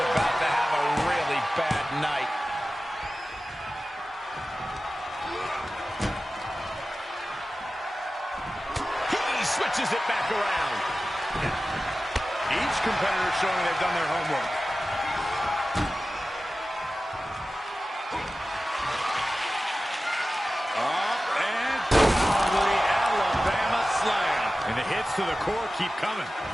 to have a really bad night. He switches it back around. Each competitor showing they've done their homework. Up and the Alabama slam. And the hits to the core keep coming.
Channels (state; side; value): normal; both; correlation 0.95